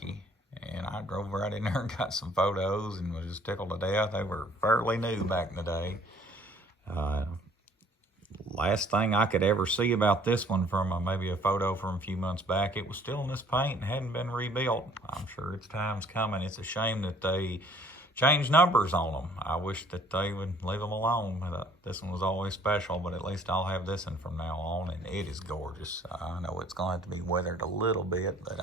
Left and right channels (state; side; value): normal; both; correlation 0.57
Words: And I drove right in there and got some photos and was just tickled to death. They were fairly new back in the day. Last thing I could ever see about this one from maybe a photo from a few months back, it was still in this paint and hadn't been rebuilt. I'm sure its time's coming. It's a shame that they changed numbers on them. I wish that they would leave them alone. This one was always special, but at least I'll have this one from now on, and it is gorgeous. I know it's going to have to be weathered a little bit, but